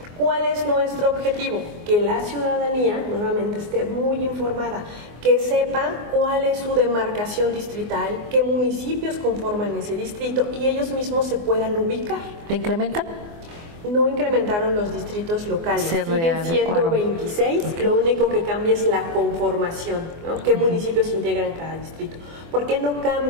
¿Cuál es nuestro objetivo? Que la ciudadanía nuevamente esté muy informada, que sepa cuál es su demarcación distrital, qué municipios conforman ese distrito y ellos mismos se puedan ubicar. ¿Le incrementan? No incrementaron los distritos locales, siguen siendo 26, okay. Lo único que cambia es la conformación, ¿no? ¿Qué municipios integran cada distrito? ¿Por qué no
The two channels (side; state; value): left; late; 24 ms